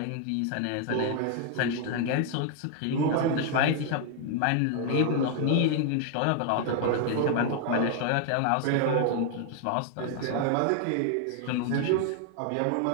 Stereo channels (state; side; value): different; both; correlation 0.00